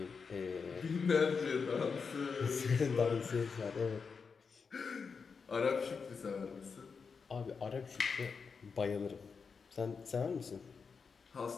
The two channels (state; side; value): quieter; right; 5.4 dB